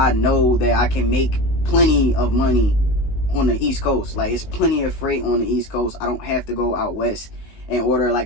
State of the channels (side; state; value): right; late; 19 ms